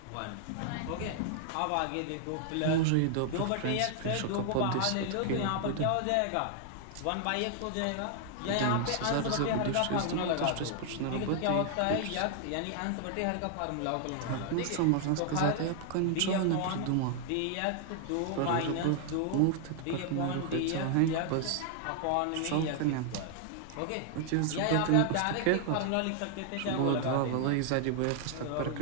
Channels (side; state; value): both; different; correlation 0.00